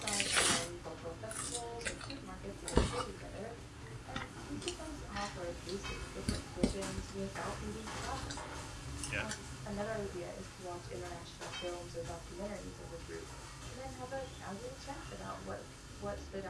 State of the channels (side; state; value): both; identical; correlation 1.00